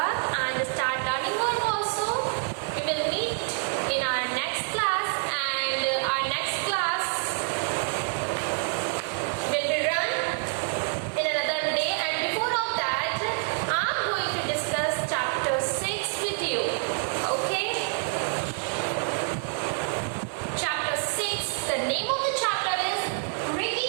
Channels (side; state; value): left; silent; 60 dB below the other